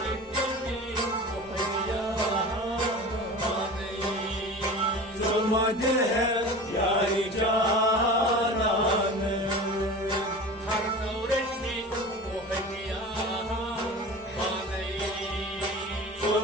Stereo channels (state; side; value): normal; both; correlation 0.35